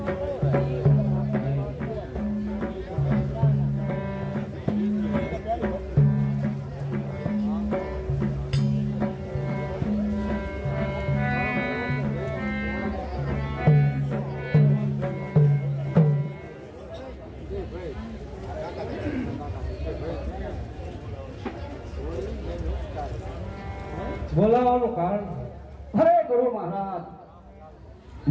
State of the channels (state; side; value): identical; both; correlation 1.00